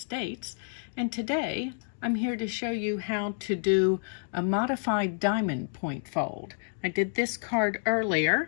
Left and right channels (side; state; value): right; silent; digital silence